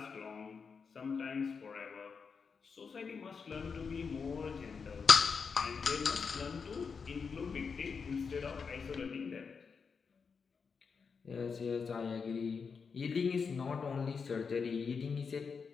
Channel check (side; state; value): right; quieter; 5.6 dB